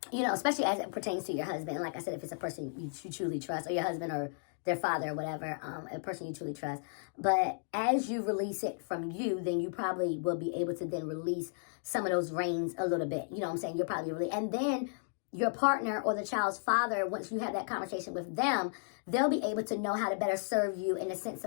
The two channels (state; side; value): silent; right; digital silence